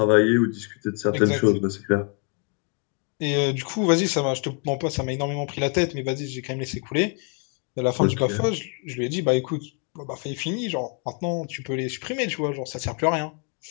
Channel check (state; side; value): quieter; right; 36.7 dB